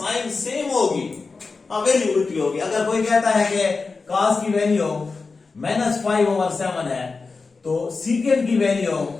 सेम होगी, वैल्यू उल्टी होगी। अगर कोई कहता है कि कॉस की वैल्यू -5/7 है तो सीकेंड की वैल्यू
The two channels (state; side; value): quieter; right; 4.3 dB